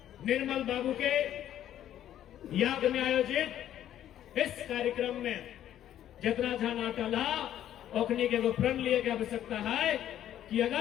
निर्मल बाबू के याद में आयोजित इस कार्यक्रम में जितना ध्यान अटल ओखनी के प्रण लिए की आवश्यकता है कि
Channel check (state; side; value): quieter; right; 11.4 dB